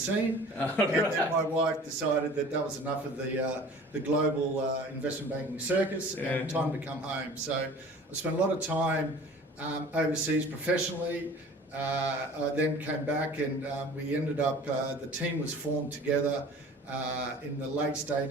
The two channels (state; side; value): normal; both; correlation 0.45